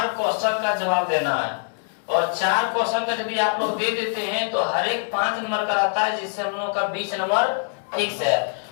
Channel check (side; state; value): right; silent; 63 dB below the other